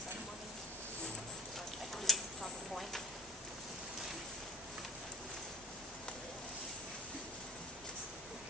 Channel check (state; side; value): normal; both; correlation 0.39